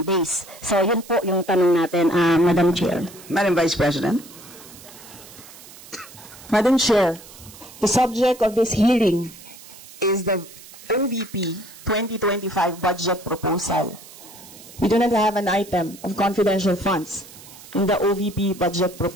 days? So, yun po yung tanong natin, Madam Chair. Madam Vice President. Madam Chair, the subject of this hearing is the OVP 2025 budget proposal. We do not have an item of confidential funds in the OVP budget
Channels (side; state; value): right; noise; hiss, 19 dB below the sound